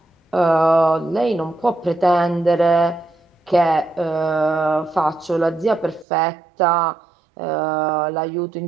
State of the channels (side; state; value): left; drops out; at 6.1 s